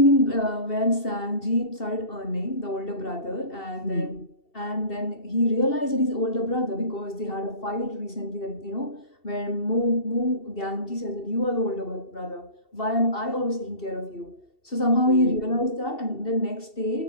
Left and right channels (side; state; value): right; late; 2.7 ms